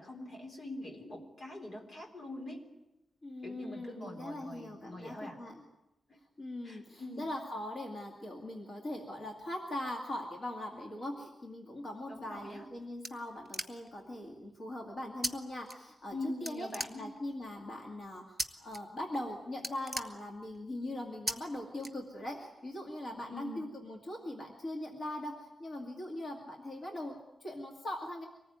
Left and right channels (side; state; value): both; normal; correlation 0.87